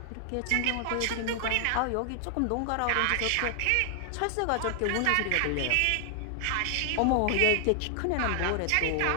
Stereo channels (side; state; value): both; different; correlation 0.00